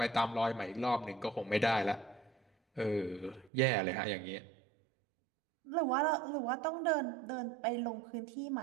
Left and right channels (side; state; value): left; drops out; at 3.5 s